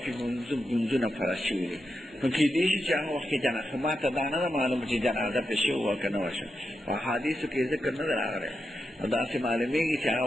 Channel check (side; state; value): both; normal; correlation 0.87